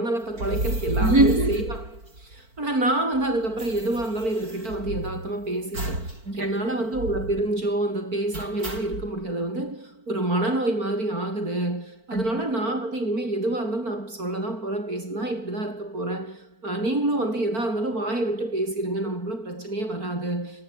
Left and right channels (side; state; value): left; late; 4.5 ms